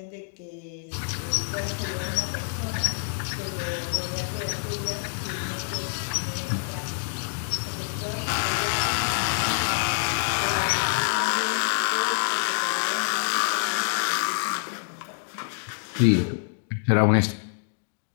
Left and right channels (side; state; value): right; silent; digital silence